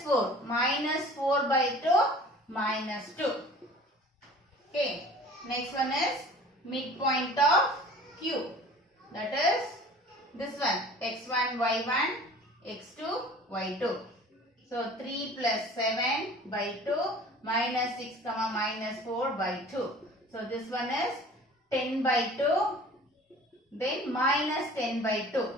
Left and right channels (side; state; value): both; normal; correlation 0.45